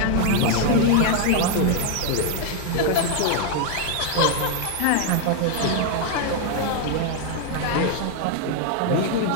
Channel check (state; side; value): different; both; correlation 0.00